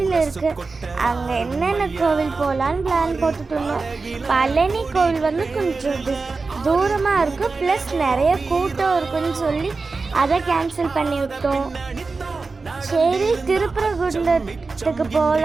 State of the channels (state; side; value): quieter; left; 4.1 dB